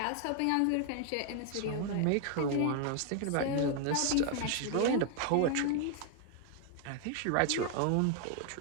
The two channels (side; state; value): both; different; correlation 0.00